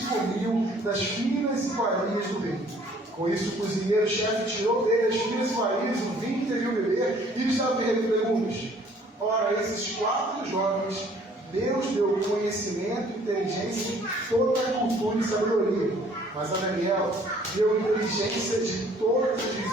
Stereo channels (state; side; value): normal; both; correlation 0.58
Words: comiam das finas iguarias do rei. Com isso, o cozinheiro-chefe tirou dele as finas iguarias, o vinho que deviam beber, e lhes dava legumes. Ora, esses 4 jovens, Deus deu conhecimento, inteligência e toda a cultura e sabedoria. Mas a Daniel deu inteligência de todas as